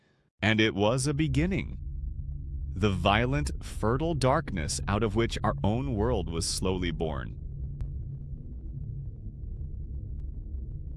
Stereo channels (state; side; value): identical; both; correlation 1.00